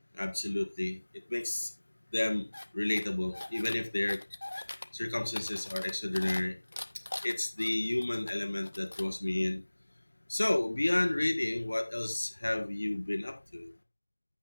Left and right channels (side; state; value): both; inverted; correlation -1.00